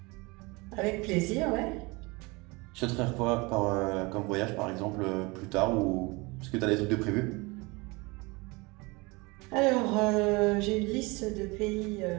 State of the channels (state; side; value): quieter; left; 25.4 dB